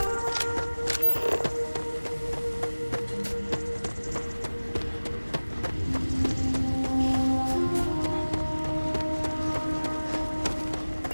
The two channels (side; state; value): both; inverted; correlation -1.00